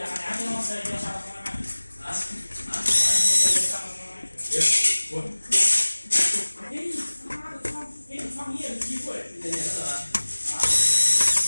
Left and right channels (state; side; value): inverted; both; correlation -1.00